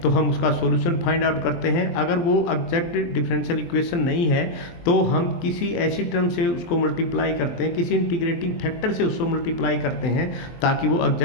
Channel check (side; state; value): right; late; 23 ms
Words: तो हम उसका सॉल्यूशन फाइंड आउट करते हैं। अगर वो एग्जैक्ट डिफरेंशियल इक्वेशन नहीं है तो हम किसी ऐसी टर्म से उसको मल्टीप्लाई करते हैं, किसी इंटीग्रेटिंग फैक्टर से उसको मल्टीप्लाई करते हैं ताकि वो